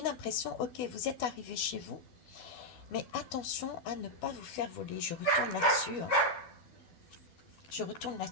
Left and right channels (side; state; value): right; late; 12 ms